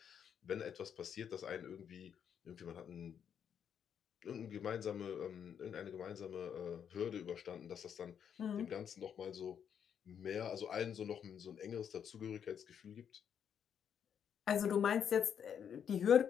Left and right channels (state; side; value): quieter; right; 8.2 dB